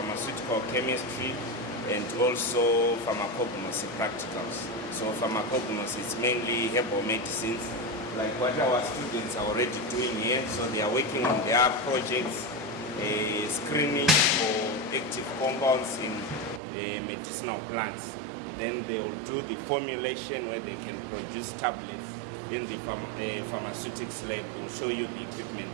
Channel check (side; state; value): left; drops out; at 16.6 s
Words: chemistry and also pharmacognosy practicals. So pharmacognosy is mainly herbal medicines, like what our students are already doing here. So they are working on their projects, screening for active compounds in medicinal plants. Then they will do the formulation where they can produce tablets. Then the pharmaceutics lab will show you the equipment